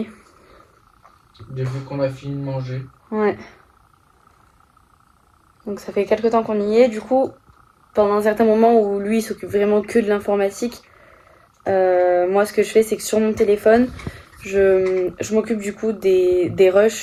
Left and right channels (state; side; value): identical; both; correlation 1.00